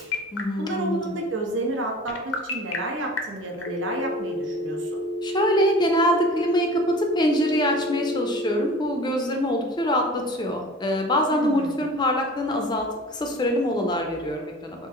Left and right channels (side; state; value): both; normal; correlation 0.41